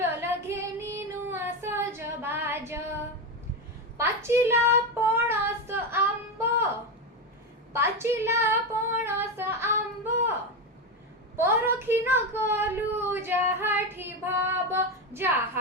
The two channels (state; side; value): normal; both; correlation 0.14